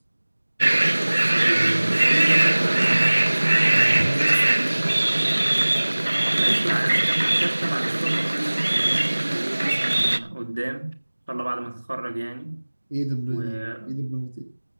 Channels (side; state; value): both; inverted; correlation -1.00